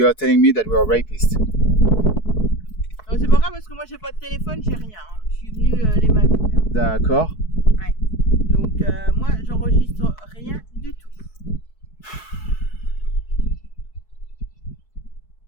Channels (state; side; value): late; right; 4.6 ms